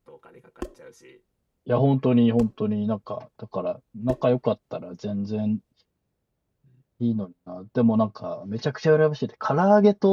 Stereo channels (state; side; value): identical; both; correlation 1.00